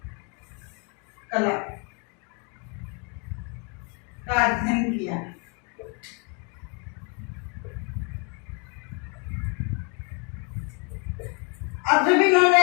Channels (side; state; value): right; quieter; 35.1 dB